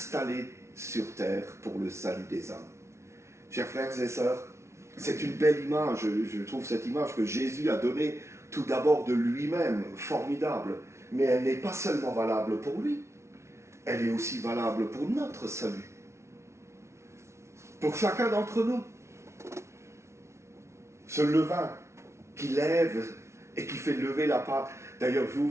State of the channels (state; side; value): late; left; 0.13 ms